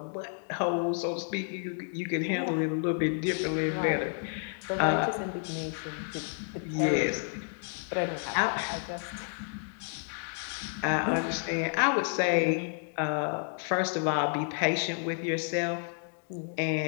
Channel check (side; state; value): right; silent; 55 dB below the other